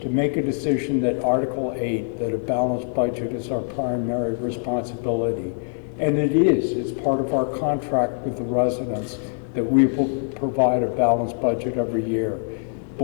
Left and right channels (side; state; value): right; silent; digital silence